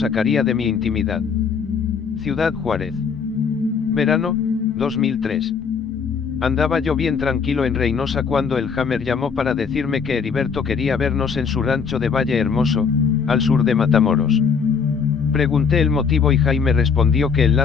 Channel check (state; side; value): quieter; right; 6.0 dB